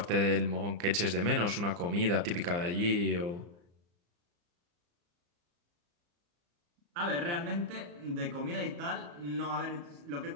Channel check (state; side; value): late; left; 34 ms